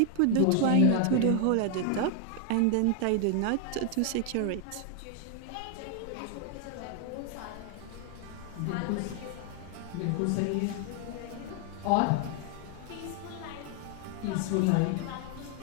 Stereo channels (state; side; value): different; both; correlation 0.00